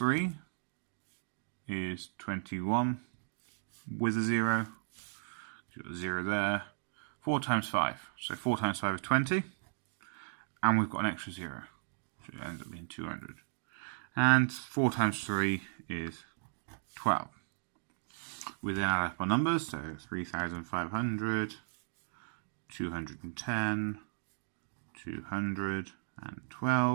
is 21 with a 0. Got a 0 there. 4 times 5. So 4 times 5 is 20. And we've got an extra 0. So it ends up being 200. And 4 times 3 is 12. We then add up our numbers. So 3,500, 210,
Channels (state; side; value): silent; left; digital silence